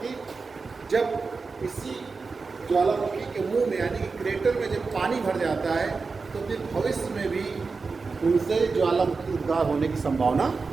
जब इसी ज्वालामुखी के मुंह में यानी कि क्रेटर में जब पानी भर जाता है तो फिर भविष्य में भी उनसे ज्वालामुखी उद्गार होने की संभावना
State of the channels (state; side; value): quieter; left; 4.5 dB